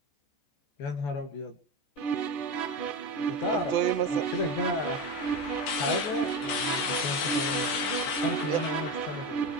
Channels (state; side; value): late; right; 14 ms